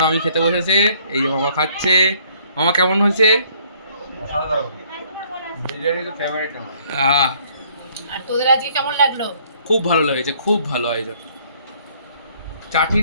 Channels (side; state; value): both; inverted; correlation -0.62